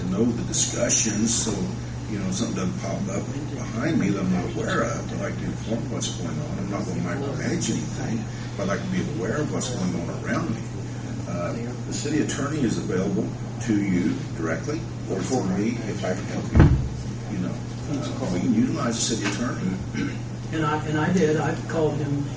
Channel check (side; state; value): both; identical; correlation 1.00